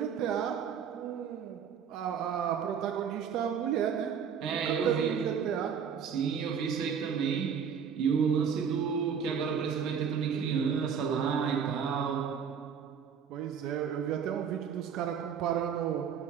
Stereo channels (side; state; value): left; quieter; 7.2 dB